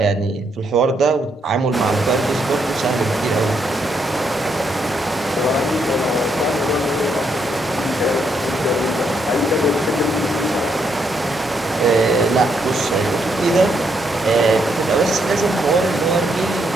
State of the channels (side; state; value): both; normal; correlation 0.76